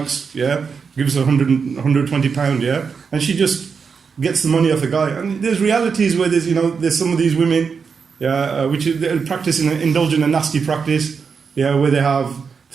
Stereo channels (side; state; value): left; quieter; 5.7 dB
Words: Yeah, gives 120 £120. Yeah, and she just gets the money off the guy." And there's realities where there's some of these women, which practice indulge in a nasty practice, where they have